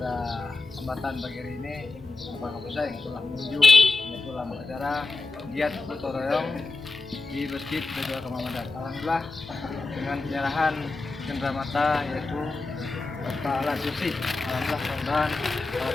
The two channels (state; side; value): quieter; right; 3.5 dB